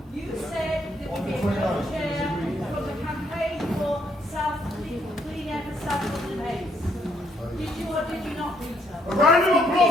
you said there would be a co-chair from the campaign for clean air for Southall and Hayes. Did you or did you not, Rita? A round of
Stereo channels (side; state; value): both; normal; correlation 0.71